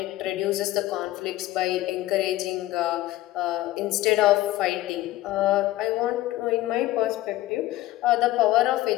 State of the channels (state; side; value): quieter; right; 16.1 dB